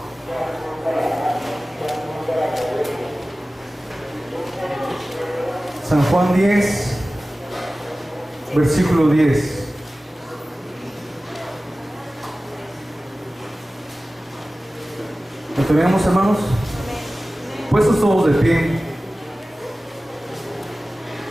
San Juan 10, versículo 10. ¿Lo tenemos, hermanos? Puestos todos de pie.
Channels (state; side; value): normal; both; correlation 0.96